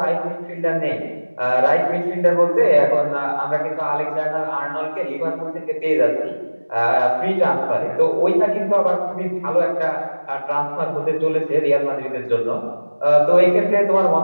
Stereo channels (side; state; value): both; inverted; correlation -1.00